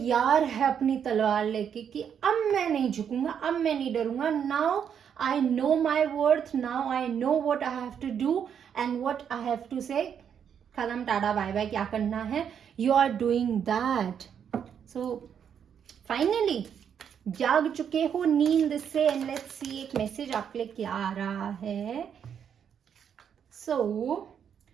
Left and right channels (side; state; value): left; quieter; 8.1 dB